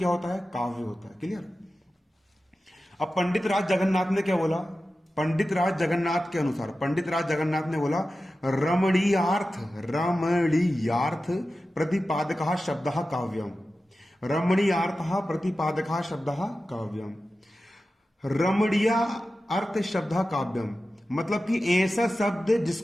होता है? काव्य होता है। क्लियर। अब पंडित राज जगन्नाथ ने क्या बोला? पंडित राज जगन्नाथ के अनुसार, पंडित राज जगन्नाथ ने बोला, रमणीयार्थ, रमणीयार्थ प्रतिपादकः शब्दः काव्यम। रमणीयार्थः प्रतिपादकः शब्दः काव्यम। रमणीय अर्थ शब्द काव्यम मतलब कि ऐसा शब्द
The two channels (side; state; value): both; normal; correlation 0.93